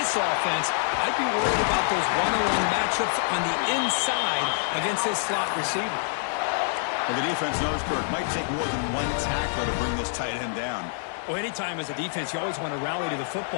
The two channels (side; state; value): right; silent; digital silence